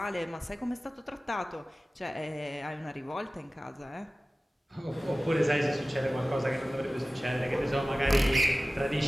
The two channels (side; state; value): both; normal; correlation 0.96